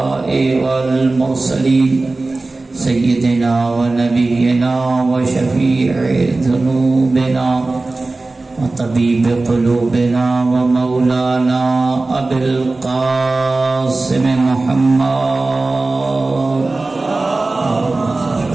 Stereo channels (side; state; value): left; quieter; 3.3 dB